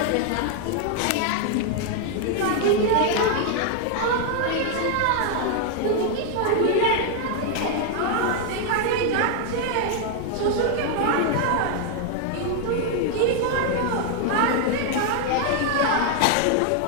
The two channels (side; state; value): both; different; correlation 0.00